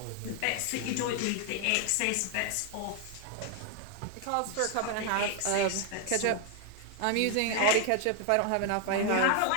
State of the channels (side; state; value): both; different; correlation 0.00